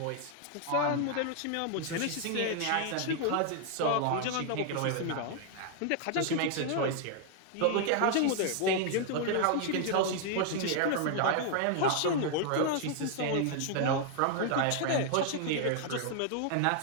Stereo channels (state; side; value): different; both; correlation 0.00